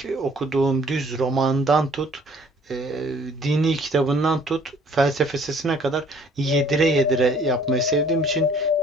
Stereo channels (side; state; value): both; normal; correlation 0.57